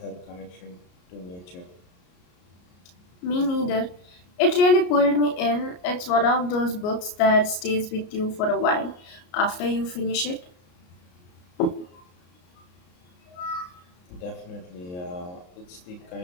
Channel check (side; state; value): right; late; 33 ms